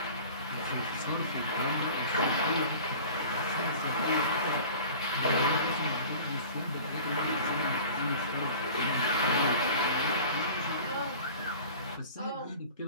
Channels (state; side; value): inverted; both; correlation -0.41